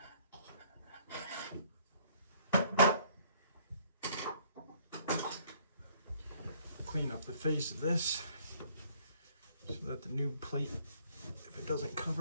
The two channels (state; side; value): inverted; both; correlation -0.60